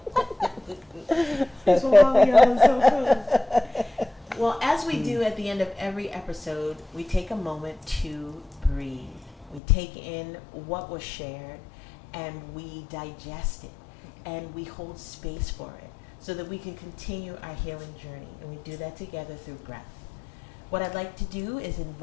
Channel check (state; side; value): drops out; right; at 9.6 s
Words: Well, as we do at the end of every episode, we take a moment to breathe. We take in what was shared and we digest it and we hold space for it so that we can continue our healing journey. And we do that together through breath. What I'd like to do is